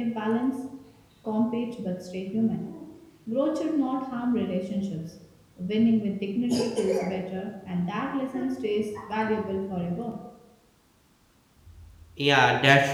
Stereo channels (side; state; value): both; identical; correlation 1.00